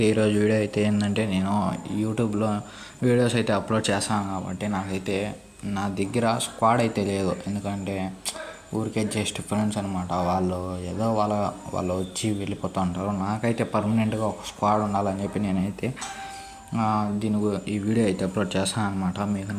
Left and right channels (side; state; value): both; identical; correlation 1.00